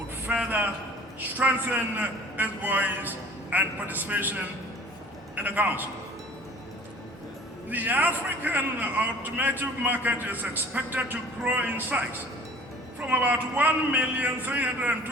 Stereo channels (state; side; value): normal; both; correlation 0.47